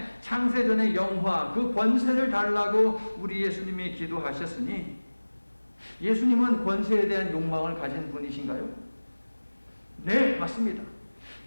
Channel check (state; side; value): inverted; both; correlation -1.00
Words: 창세전의 영화, 그 권세를 달라고 우리 예수님이 기도하셨으니 예수님은 권세에 대한 욕망을 가진 분이신가요? 네, 맞습니다.